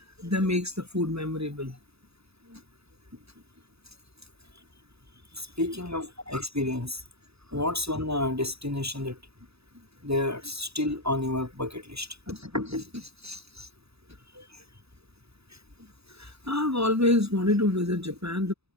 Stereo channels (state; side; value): late; left; 0.78 ms